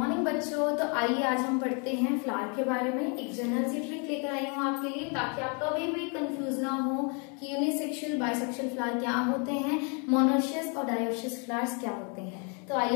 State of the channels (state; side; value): quieter; right; 35.8 dB